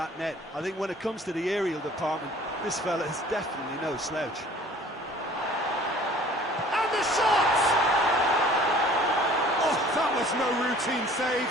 net. I think when it comes to the aerial department, this fella is definitely no slouch. And the shot! Oh, that was no routine save.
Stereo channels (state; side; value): normal; both; correlation 0.50